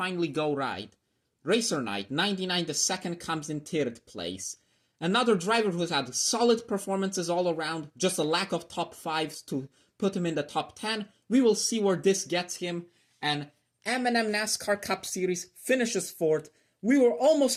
go right. Racer Knight, 99, the 2nd, comes in 3rd place. Another driver who's had solid performances all around. Just a lack of top 5s to put him in the top 10. We will see where this gets him. And M&M NASCAR Cup Series finishes 4th. We were almost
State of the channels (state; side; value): identical; both; correlation 1.00